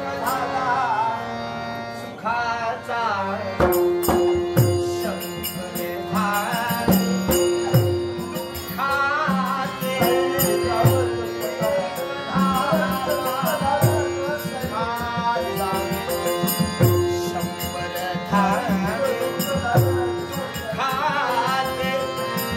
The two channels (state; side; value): identical; both; correlation 1.00